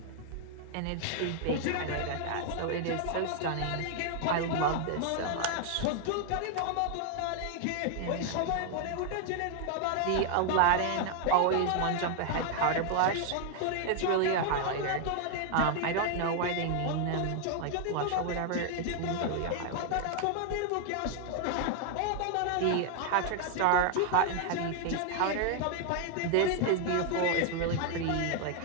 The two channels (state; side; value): different; both; correlation 0.00